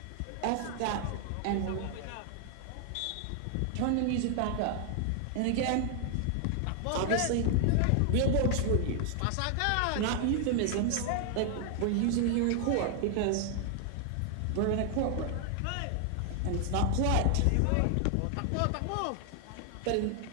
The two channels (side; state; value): both; different; correlation 0.00